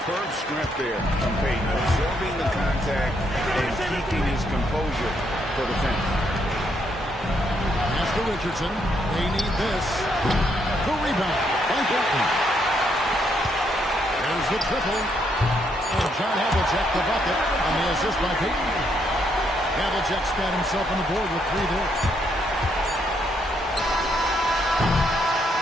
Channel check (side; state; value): both; normal; correlation 0.74